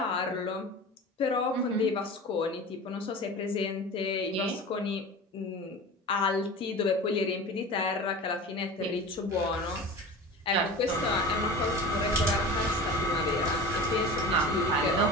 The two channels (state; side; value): normal; both; correlation 0.34